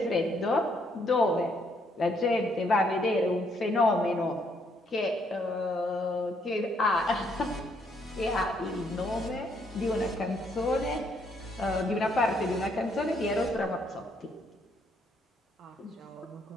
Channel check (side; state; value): both; normal; correlation 0.71